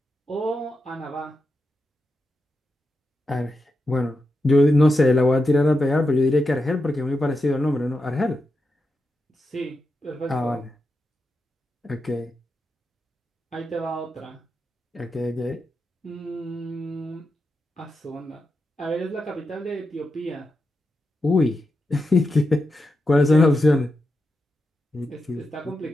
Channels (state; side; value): normal; both; correlation 0.88